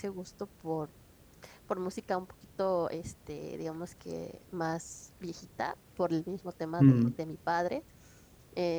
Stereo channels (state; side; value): identical; both; correlation 1.00